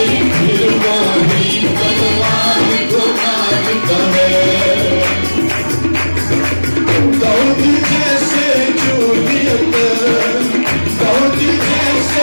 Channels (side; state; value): both; inverted; correlation -1.00